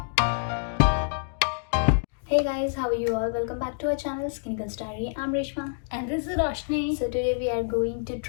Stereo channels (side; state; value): right; silent; digital silence